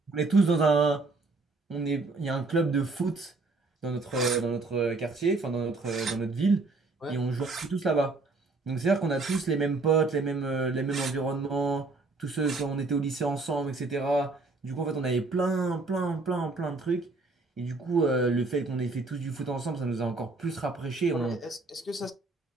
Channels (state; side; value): quieter; left; 3.6 dB